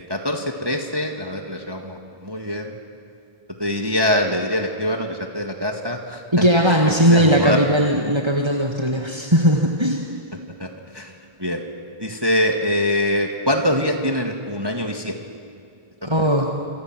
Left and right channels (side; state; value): left; late; 1.1 ms